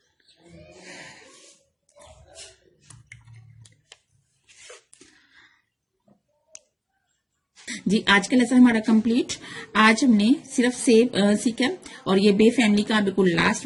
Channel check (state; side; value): identical; both; correlation 1.00